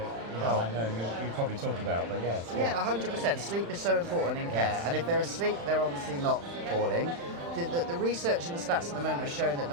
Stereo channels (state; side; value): late; left; 35 ms